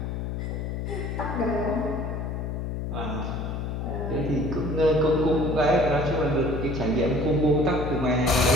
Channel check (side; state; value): left; noise; hum, 3 dB below the sound